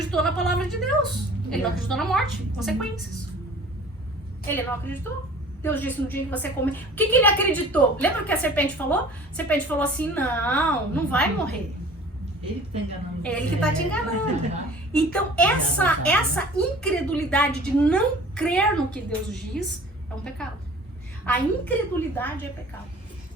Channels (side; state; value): both; normal; correlation 0.46